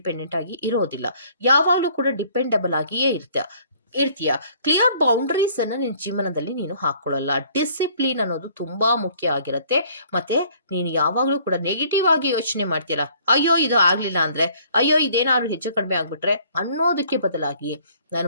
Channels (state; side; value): inverted; both; correlation -0.58